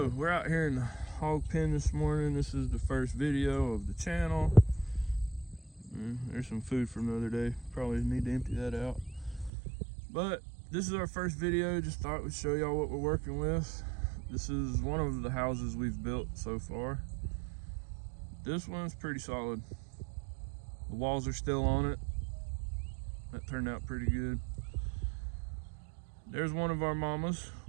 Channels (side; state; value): left; drops out; at 9.5 s